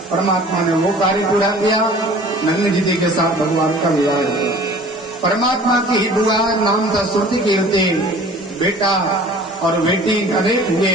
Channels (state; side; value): normal; both; correlation 0.46